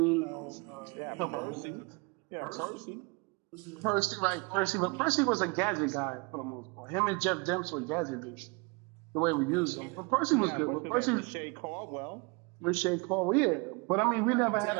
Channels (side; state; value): left; quieter; 29.5 dB